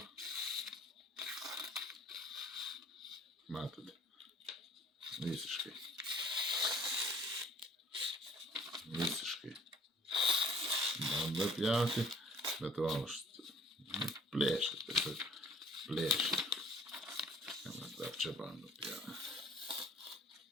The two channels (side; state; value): both; normal; correlation 0.53